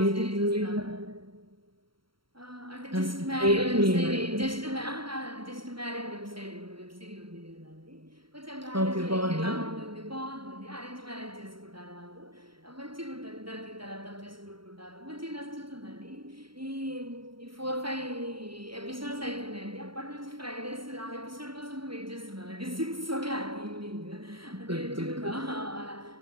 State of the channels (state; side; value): late; left; 0.74 ms